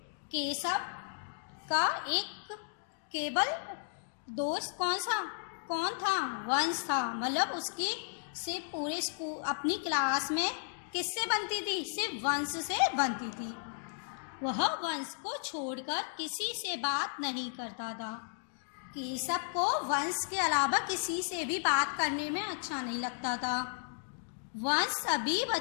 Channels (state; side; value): silent; right; digital silence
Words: केशव का एक केवल दोस्त कौन था? वंश था। मतलब उसकी सिर्फ पूरे स्कूल, अपनी क्लास में किससे बनती थी? सिर्फ वंश से बनती थी। वह वंश को छोड़कर किसी से बात नहीं करता था। केशव को वंश के अलावा किसी से भी बात करने में अच्छा नहीं लगता था। वंश सभी